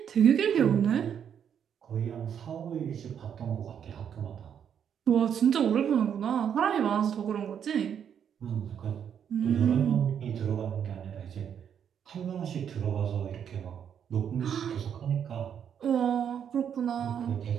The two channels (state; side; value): quieter; left; 8.4 dB